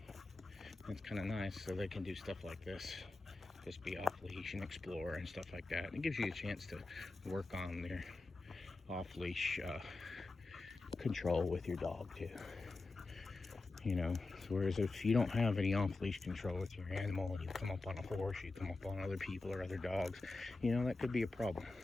It's kind of nice, so they can do stuff like this. Just be off leash and explore and stuff like that. And it gives you a chance to work on their off leash control with your dog too. You know, whereas if you don't have any off-leash control with your animal, you come up on a horse, you come up on other people or other dogs, you know, that could be a problem.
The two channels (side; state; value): right; quieter; 3.4 dB